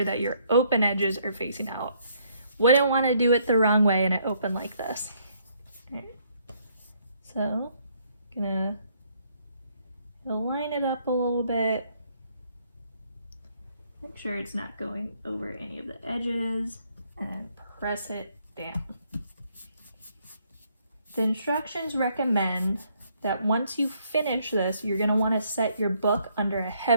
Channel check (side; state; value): both; inverted; correlation -0.69